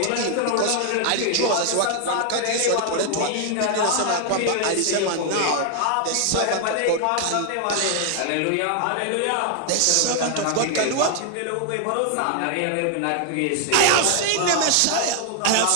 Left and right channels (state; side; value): different; both; correlation 0.00